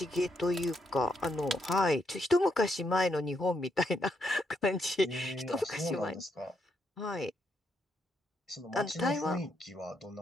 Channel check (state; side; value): normal; both; correlation 0.78